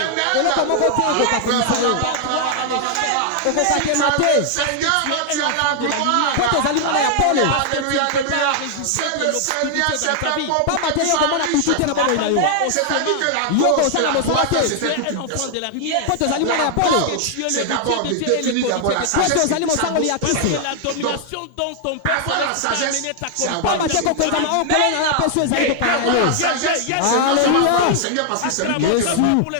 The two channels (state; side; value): different; both; correlation 0.00